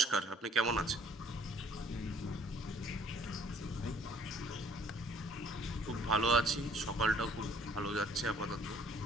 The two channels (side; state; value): both; normal; correlation 0.58